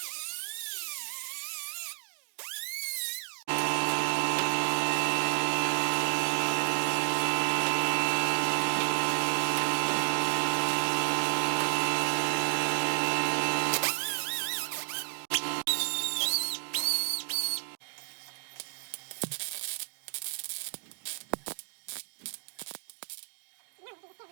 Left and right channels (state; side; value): silent; left; digital silence